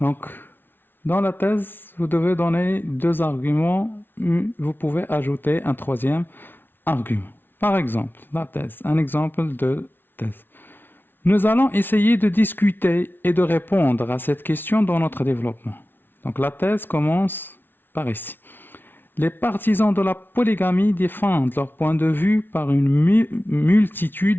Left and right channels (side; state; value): right; late; 0.10 ms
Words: dans la thèse, vous devez donner deux arguments, vous pouvez ajouter un troisième argument. Par exemple, la thèse, un exemple de thèse. Nous allons essayer de discuter et de répondre à cette question dans notre développement. Donc, la thèse commence par ici. Les partisans de la polygamie défendent leur point de vue par une